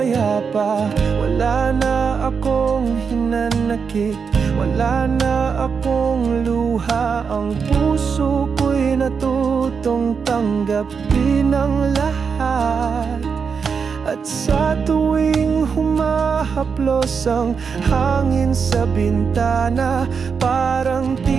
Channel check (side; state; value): left; quieter; 5.9 dB